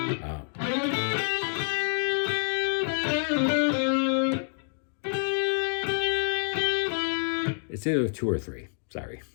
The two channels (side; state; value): right; silent; digital silence